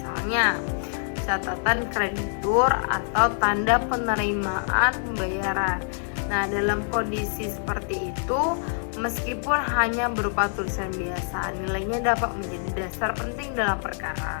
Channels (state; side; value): silent; right; 61 dB below the other